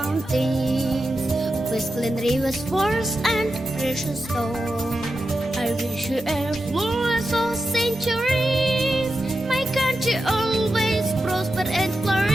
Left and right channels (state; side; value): normal; both; correlation 0.90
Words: with clean rivers, forests, and precious stone. I wish you a flawless of centuries. My country always prosper and